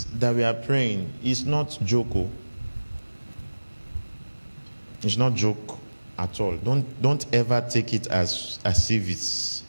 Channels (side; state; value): both; inverted; correlation -1.00